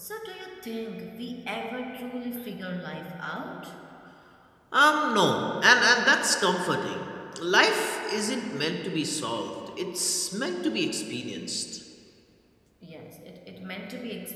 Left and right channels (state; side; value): identical; both; correlation 1.00